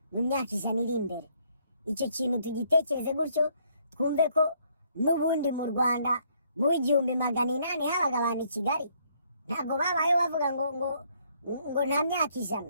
mu myaka 100 iri imbere. Icyo kintu tugitekereze gutyo, twumve ko n'ubundi mu Rwanda mu 1800 habaga abantu i Kigali, ntabwo babaye bavuga ngo nta myaka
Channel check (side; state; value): both; inverted; correlation -0.68